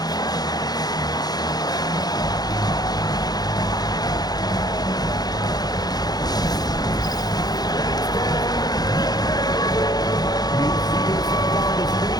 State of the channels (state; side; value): late; right; 0.19 ms